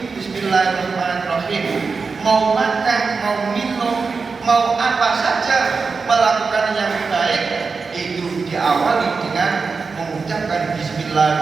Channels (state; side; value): quieter; left; 4.7 dB